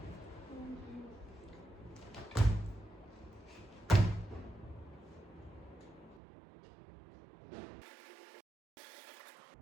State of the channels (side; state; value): left; drops out; at 6.2 s